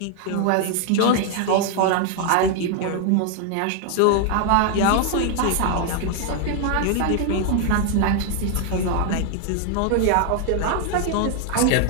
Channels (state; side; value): different; both; correlation 0.00